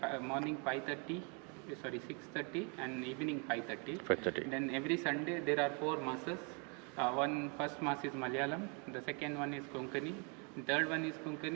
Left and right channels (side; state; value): left; quieter; 35.6 dB